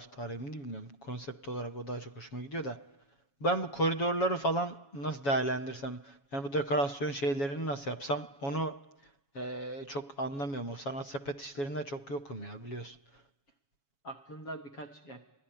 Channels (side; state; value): right; late; 7.2 ms